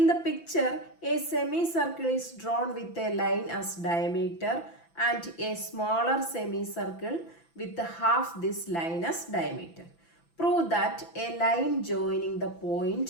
the picture a semi circle is drawn with a line as diameter and a smaller semi circle with half this line as diameter. Prove that a line joining the point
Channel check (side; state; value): right; late; 5.9 ms